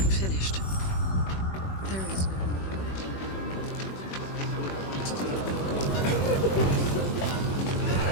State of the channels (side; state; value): right; late; 21 ms